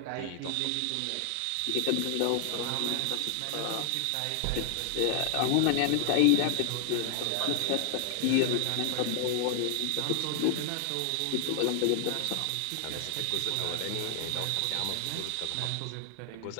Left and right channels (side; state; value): both; different; correlation 0.00